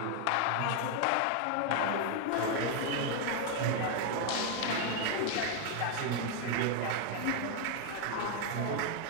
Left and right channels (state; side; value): different; both; correlation 0.01